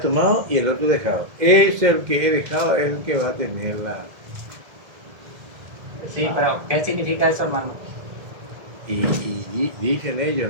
y el otro dejado. Es el que he dejado, es el que va a tener la... Sí, pero ¿qué significa eso, hermano? Y dicen ellos,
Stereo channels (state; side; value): late; left; 1.7 ms